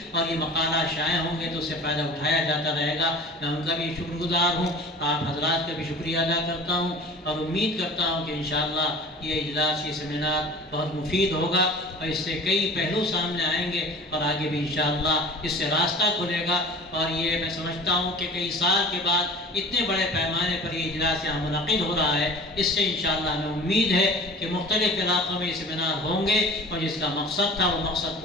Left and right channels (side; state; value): both; normal; correlation 0.41